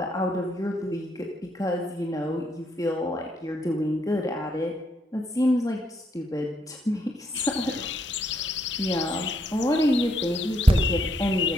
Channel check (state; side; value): normal; both; correlation 0.75